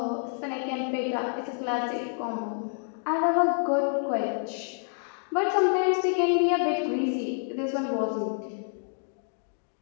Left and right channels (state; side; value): silent; right; 57 dB below the other